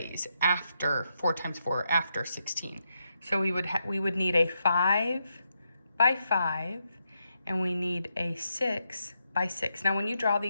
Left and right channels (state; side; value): inverted; both; correlation -0.83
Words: after 4 times 4, after 16. So we would need a 5 by 5, and we need a 6 by 6. Now when you draw